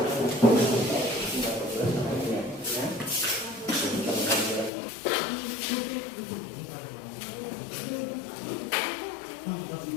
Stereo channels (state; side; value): drops out; right; at 4.7 s